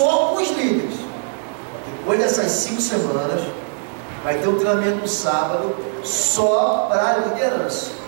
com os líderes. Depois dessas 5 semanas, vai ter um treinamento no sábado só para a liderança,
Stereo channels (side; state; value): left; silent; 61 dB below the other